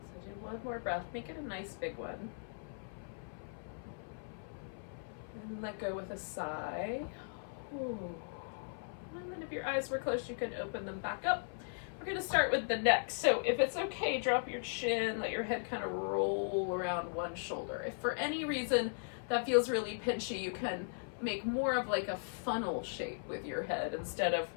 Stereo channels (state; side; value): silent; right; 53 dB below the other